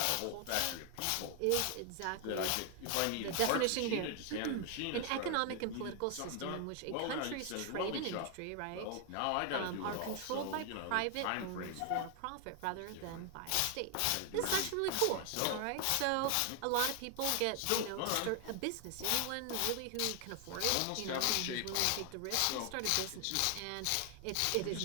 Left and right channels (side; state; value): both; different; correlation 0.00